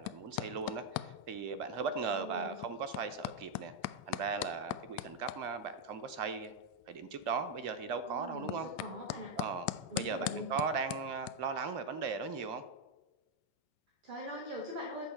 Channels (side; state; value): left; late; 2.5 ms